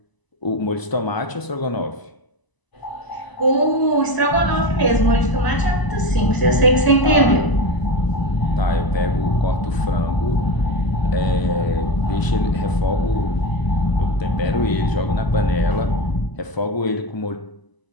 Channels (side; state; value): right; late; 1.0 ms